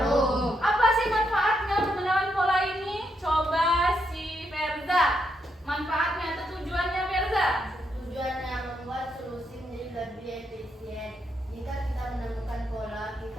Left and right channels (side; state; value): both; normal; correlation 0.79